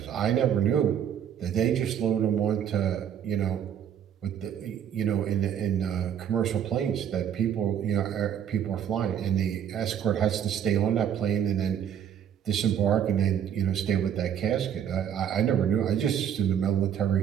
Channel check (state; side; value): quieter; left; 9.1 dB